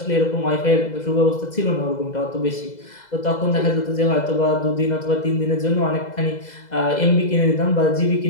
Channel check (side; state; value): right; late; 2.0 ms